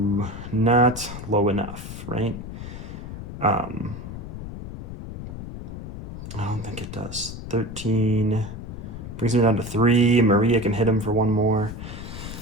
not low enough, right? I don't think it does. 13 brings him down to 3. Maria can hit him for 1 more.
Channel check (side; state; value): left; noise; rumble, 9 dB below the sound